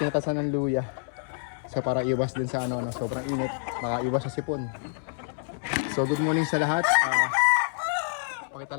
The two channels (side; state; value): right; silent; 60 dB below the other